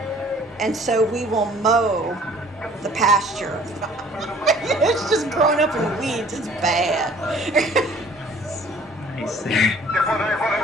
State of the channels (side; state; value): both; normal; correlation 0.54